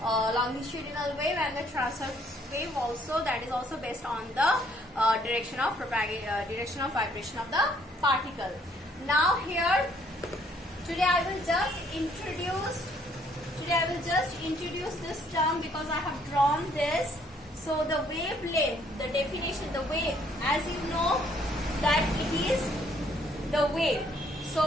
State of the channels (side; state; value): both; normal; correlation 0.65